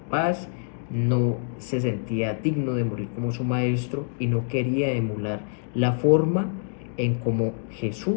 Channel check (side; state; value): right; silent; digital silence